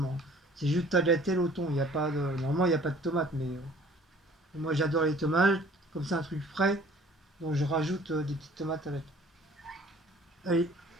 C'est juste tagliatelle au thon. Il y a pas de, normalement il n'y a pas de tomates, mais moi j'adore les tomates. Comme c'est un truc frais, donc je rajoute des petites tomates avec. Allez,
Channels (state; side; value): normal; both; correlation 0.52